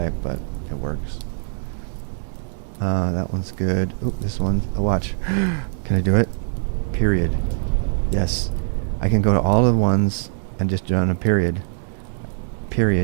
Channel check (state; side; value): silent; left; digital silence